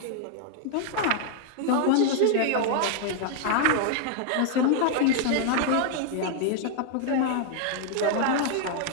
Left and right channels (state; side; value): different; both; correlation 0.00